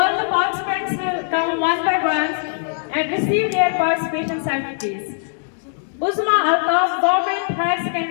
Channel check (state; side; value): silent; right; digital silence